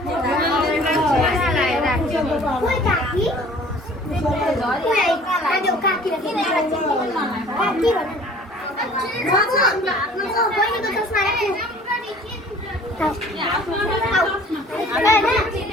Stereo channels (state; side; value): normal; both; correlation 0.50